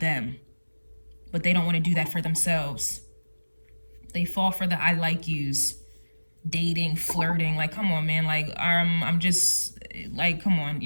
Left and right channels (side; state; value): both; inverted; correlation -1.00